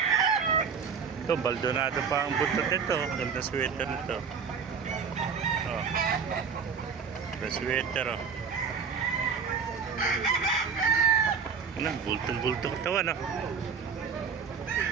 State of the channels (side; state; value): left; quieter; 6.2 dB